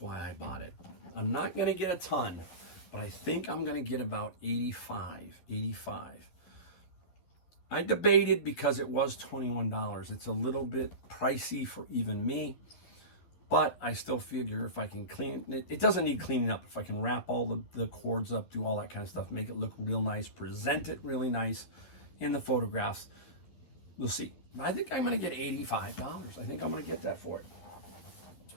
I bought it. I'm not gonna get a ton, but I think I'm gonna get about 85. I debated because it was $21. It's a little bit pricey for even me. But I still figure if I can clean it, it doesn't need cleaning up. If I can wrap all the cords up, do all that kind of stuff, make it look real nice, present it really nice in the photographs, we'll see. But I think I'm going to get $85. I think I'm going to get that for it.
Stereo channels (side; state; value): right; late; 11 ms